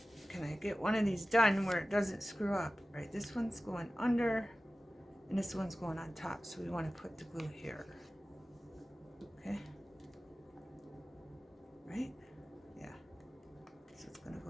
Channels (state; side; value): normal; both; correlation 0.96